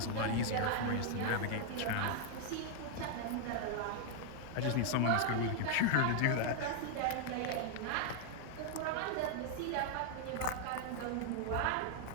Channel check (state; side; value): different; both; correlation 0.00